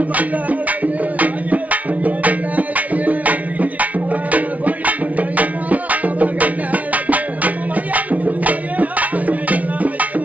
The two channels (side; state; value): left; late; 0.070 ms